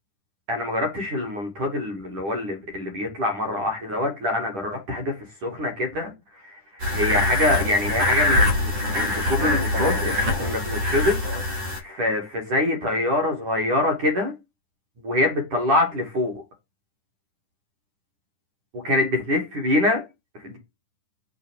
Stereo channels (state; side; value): late; left; 10 ms